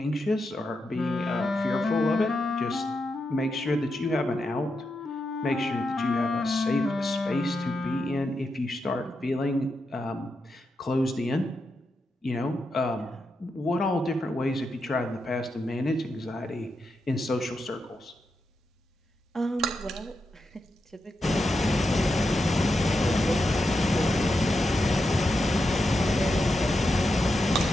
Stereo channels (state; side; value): normal; both; correlation 0.86